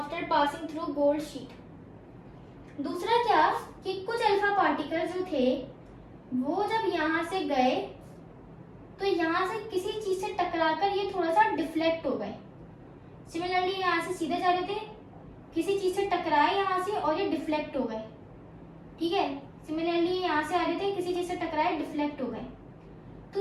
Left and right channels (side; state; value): both; identical; correlation 1.00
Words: passing through gold sheet. दूसरा क्या कि कुछ अल्फा पार्टिकल जो थे वो जब यहाँ से गए तो यहाँ से किसी चीज से टकराकर ये थोड़ा सा डिफ्लेक्ट हो गए। सिमिलरली यहाँ से सीधे जा रहे थे, किसी चीज से टकराए यहाँ से और ये डिफ्लेक्ट हो गए। ठीक है, सिमिलरली यहाँ से आ रहे थे, किसी चीज से टकराए, डिफ्लेक्ट हो गए।